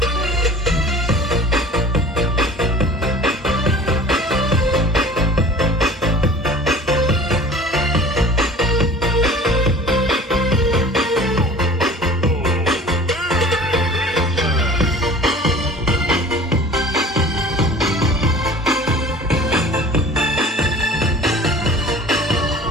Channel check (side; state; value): both; normal; correlation 0.44